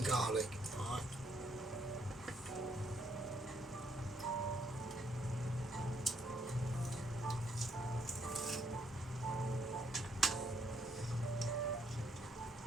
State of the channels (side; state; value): both; normal; correlation 0.72